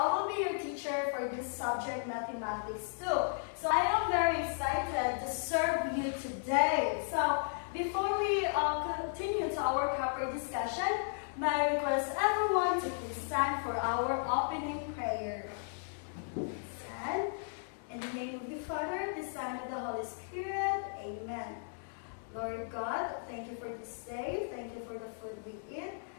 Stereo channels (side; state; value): right; silent; digital silence